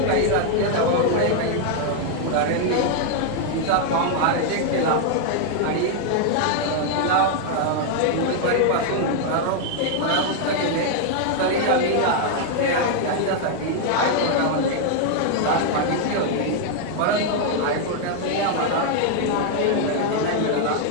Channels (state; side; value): different; both; correlation 0.00